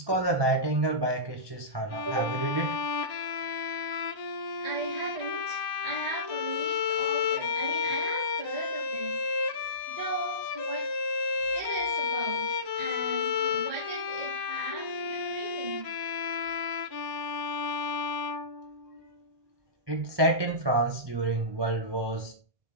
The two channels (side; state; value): left; late; 1.1 ms